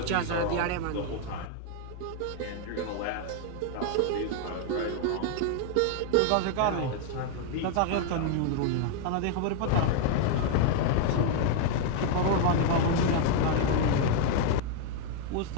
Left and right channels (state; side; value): different; both; correlation 0.00